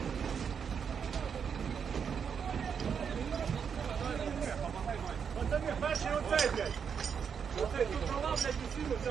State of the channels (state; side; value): quieter; left; 6.9 dB